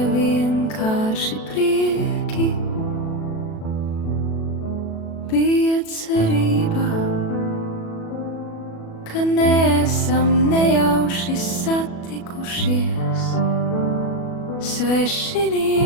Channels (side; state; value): right; late; 37 ms